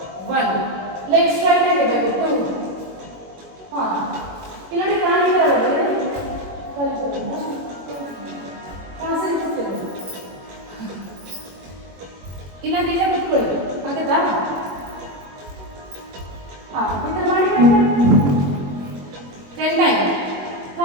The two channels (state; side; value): late; left; 21 ms